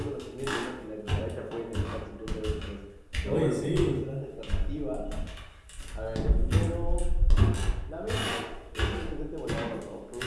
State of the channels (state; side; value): identical; both; correlation 1.00